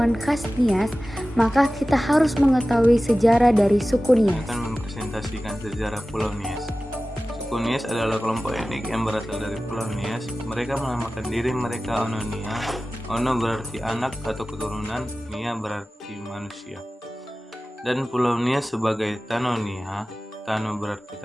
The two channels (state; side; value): normal; both; correlation 0.96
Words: khas Nias, maka kita harus mengetahui sejarah dari suku Nias. Akan mempresentasikan sejarah Pulau Nias. Suku Nias adalah kelompok etnik yang berasal dari Pulau Nias. Mereka menamakan diri mereka Ono Nia. Ono berarti anak atau keturunan, Nia berarti manusia. Dan Pulau Nias sebagai Tanonia. Tano berarti